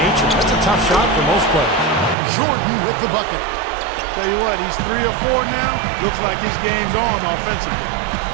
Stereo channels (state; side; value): drops out; left; at 2.1 s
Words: That's a tough shot for most players. Jordan with the bucket. Tell you what, he's 3 or 4 now. Looks like his game's on offensively.